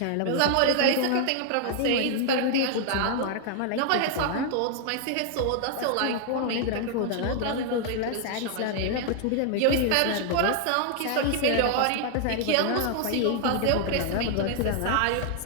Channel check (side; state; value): both; different; correlation 0.00